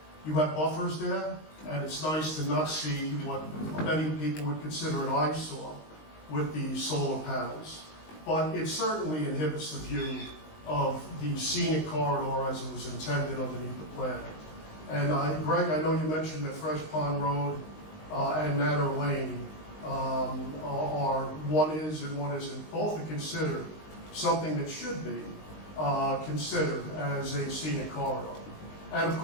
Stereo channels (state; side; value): late; right; 19 ms